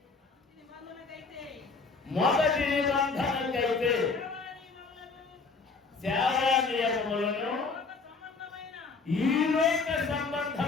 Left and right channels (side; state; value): right; quieter; 4.4 dB